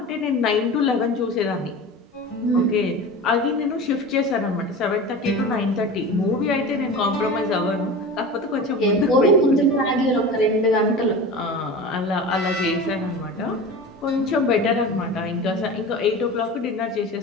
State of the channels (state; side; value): normal; both; correlation 0.32